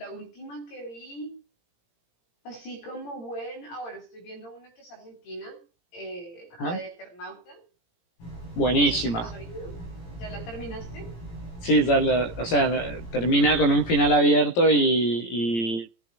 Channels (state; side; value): late; right; 17 ms